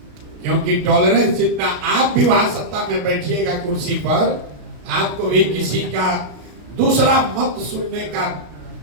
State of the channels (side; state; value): left; late; 33 ms